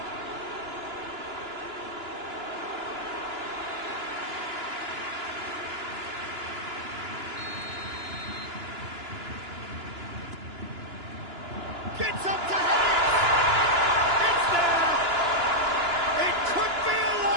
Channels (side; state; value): left; late; 2.9 ms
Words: Gets up to head it! It's there! It could be a